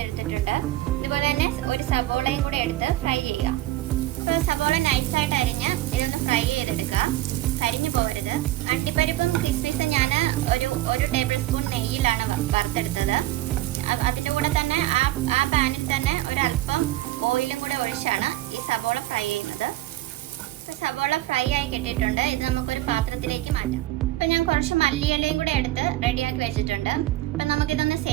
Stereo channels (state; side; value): quieter; left; 16.0 dB